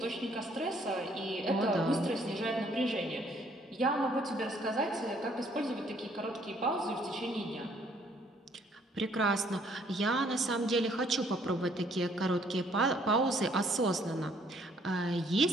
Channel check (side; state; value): both; normal; correlation 0.64